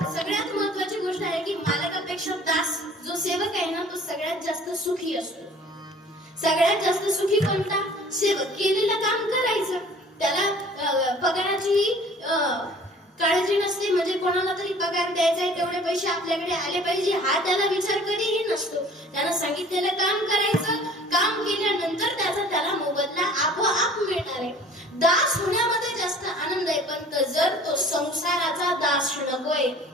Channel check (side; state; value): both; normal; correlation 0.49